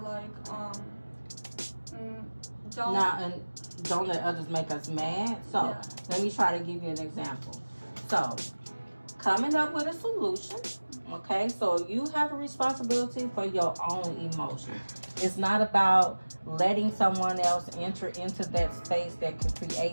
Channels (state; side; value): inverted; both; correlation -1.00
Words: Don't let others make us mad. So Yeah. let me try to give you an example. So coming up with a solution. Okay, so you have a responsibility for your own emotions. It's not about letting someone else enter into that space that can